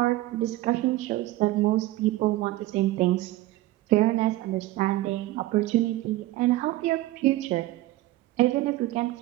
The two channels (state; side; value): quieter; left; 17.1 dB